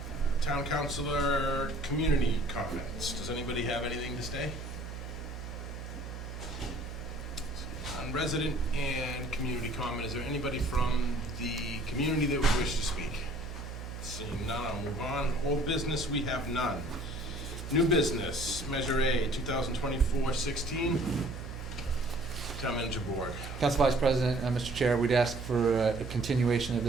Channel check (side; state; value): right; noise; hum, 9 dB below the sound